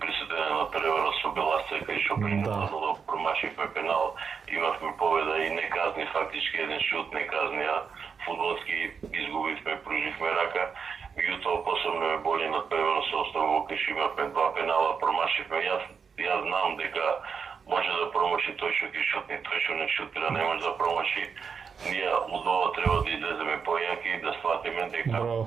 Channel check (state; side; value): quieter; left; 6.0 dB